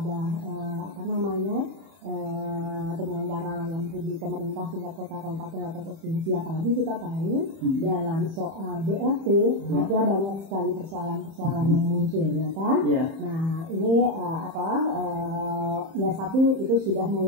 penyelenggara layanan publik pemerintah tingkat kota, kabupaten atau provinsi. Apalagi kita tahu dalam soal BLT ada banyak sekali persoalan-persoalan yang muncul ya kan. Nah ini satu itu sudah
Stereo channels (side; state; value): left; late; 31 ms